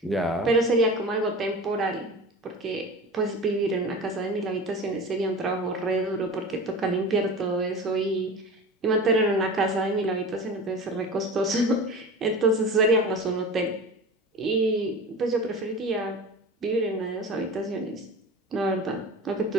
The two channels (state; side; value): normal; both; correlation 0.33